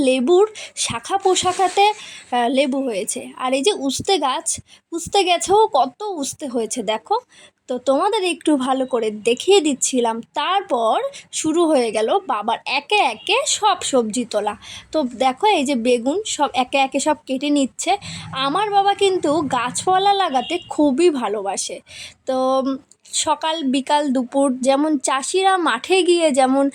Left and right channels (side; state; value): both; identical; correlation 1.00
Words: লেবুর শাখা পোশাখাতে লেবু হয়েছে, আর এই যে উস্তে গাছ, উস্তে গাছেও কত উস্তে হয়েছে দেখো। তো তোমাদের একটু ভালো করে দেখিয়ে দিচ্ছিলাম, তারপর শুরু হয়ে গেল বাবার একে একে সব সবজি তোলা। তো দেখো এই যে বেগুন সব একে একে সব কেটে নিচ্ছে। আমার বাবা কিন্তু গাছপালা লাগাতে খুবই ভালোবাসে। তো সকাল বিকাল দুপুর যেমন চাষিরা মাঠে গিয়ে যেমন